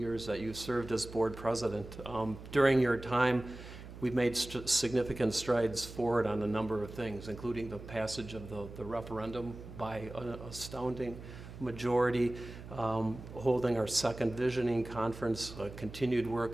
that you served as board president. During your time, we've made significant strides forward on a number of things, including the passage of the referendum by an astounding majority, holding our second visioning conference, continued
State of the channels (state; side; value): noise; right; hum, 14 dB below the sound